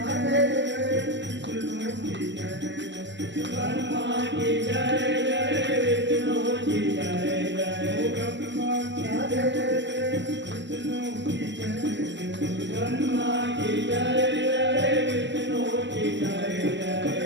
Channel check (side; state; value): left; late; 0.53 ms